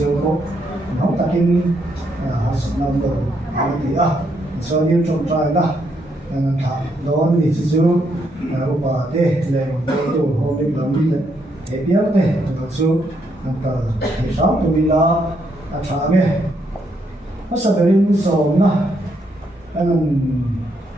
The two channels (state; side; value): normal; both; correlation 0.76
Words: khổ nó ta kinh học năm đầu thì cho nên trong trai đó thằng đó thì chỉ chú bà tê lệ rồng cô tu hôm nay làm đi thế biếng tê thật sự nằm thì sáu tụi mình là trả mẹ nó sẽ bị sầu na anh